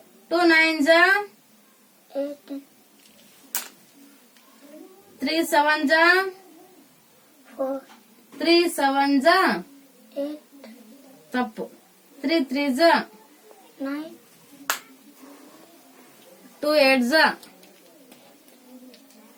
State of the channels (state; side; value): identical; both; correlation 1.00